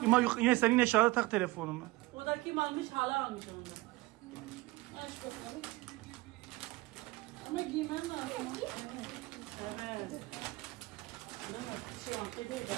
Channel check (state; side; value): quieter; left; 20.7 dB